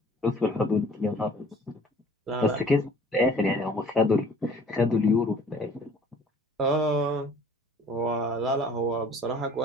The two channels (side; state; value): both; normal; correlation 0.52